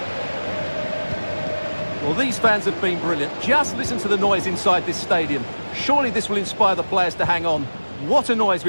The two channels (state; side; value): inverted; both; correlation -1.00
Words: Well, these fans have been brilliant. Just listen to the noise inside this stadium. Surely this will inspire the players to hang on. What a noise